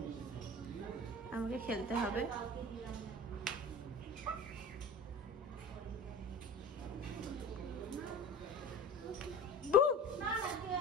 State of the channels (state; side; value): normal; both; correlation 0.36